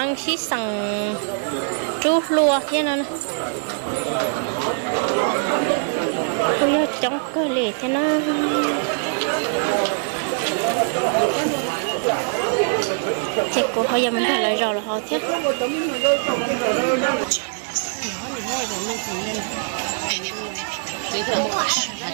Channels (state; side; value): silent; left; digital silence